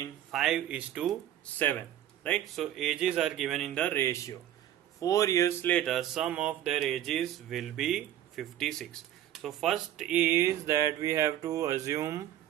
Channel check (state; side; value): quieter; left; 12.0 dB